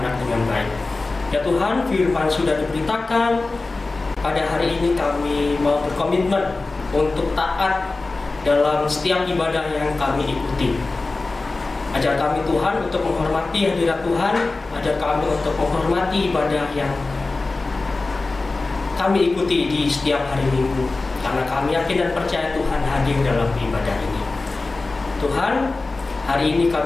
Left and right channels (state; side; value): quieter; right; 3.5 dB